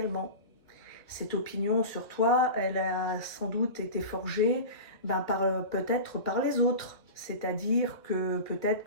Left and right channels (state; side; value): late; right; 2.2 ms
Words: Cette opinion sur toi, elle a sans doute été forgée peut-être par les autres. C'est-à-dire que peut-être